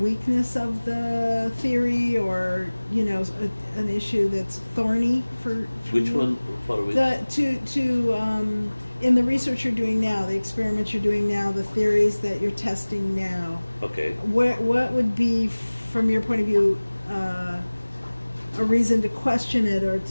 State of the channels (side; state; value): both; inverted; correlation -1.00